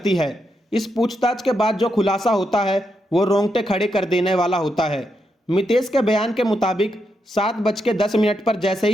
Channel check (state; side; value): normal; both; correlation 0.82